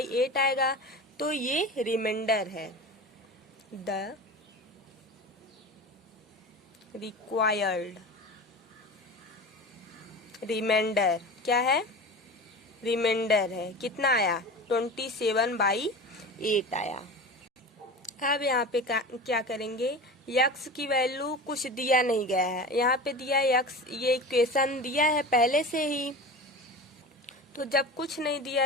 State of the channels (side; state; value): both; normal; correlation 0.32